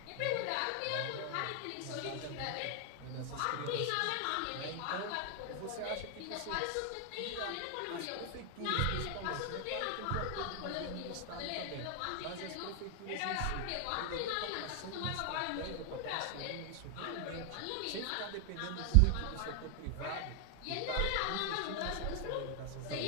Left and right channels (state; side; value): different; both; correlation 0.00